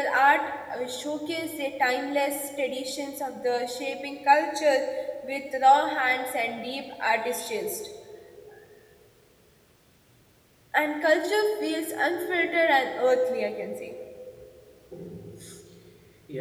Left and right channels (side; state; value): both; identical; correlation 1.00